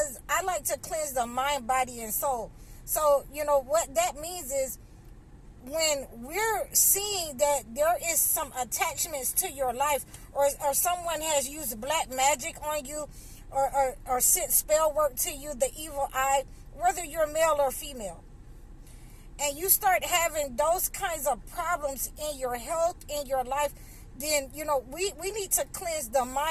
I like to cleanse the mind, body, and soul. So, what that means is when we're seeing that there is some attachments to your life, or someone has used black magic on you, or sent spell work to you, the evil eye, whether you're male or female, and you start having those kinds of problems in your health, in your life, then, we need to cleanse the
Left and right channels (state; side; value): identical; both; correlation 1.00